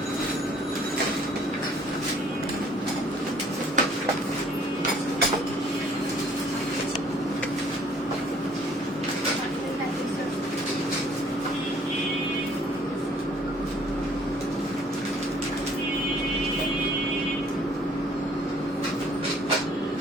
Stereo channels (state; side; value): normal; both; correlation 0.58